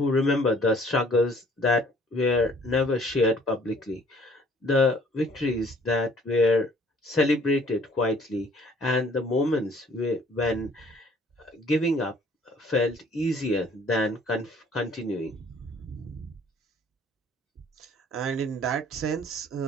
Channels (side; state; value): both; normal; correlation 0.57